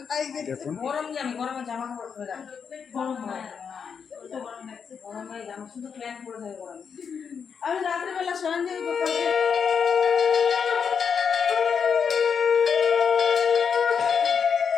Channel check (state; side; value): quieter; right; 6.6 dB